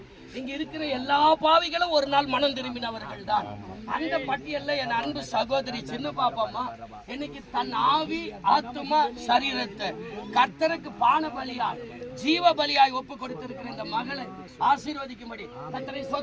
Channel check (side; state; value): both; identical; correlation 1.00